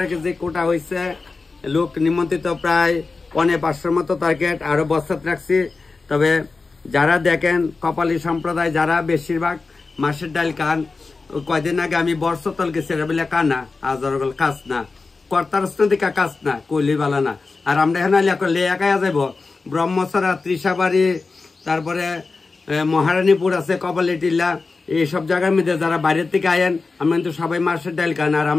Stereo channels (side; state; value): right; quieter; 4.1 dB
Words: কেজি কোটা হয়েছে লোক নিমন্ত্রিত প্রায় 550 মতো টার্গেট আরো বস্তাত রাখছি। তবে যারা দেখেন কপালী সম্প্রদায় যারা বেশিরভাগ মাছের ডাল খান কয়দিন আগে আমি বর্ষতল গেছি বলে কানা আজরগল কাজ না কর্তারস্তিকা কাজ না কইলি বালা না আর আমরা এখানে লেয়াকায়া যাব ব্রহ্মসরা তৃষাবাড়ি তারপরে মহারানীপুর আছে কপালী টিল্লা এইসব জায়গার মধ্যে যারা বাইরের থেকে আয়েন আমরা কিন্তু সবাই মাছের ডাল খান আর